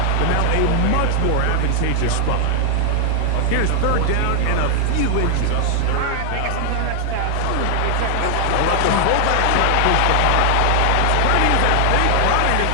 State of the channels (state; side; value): different; both; correlation 0.00